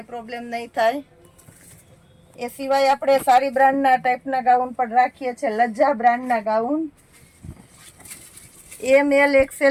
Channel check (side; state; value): both; identical; correlation 1.00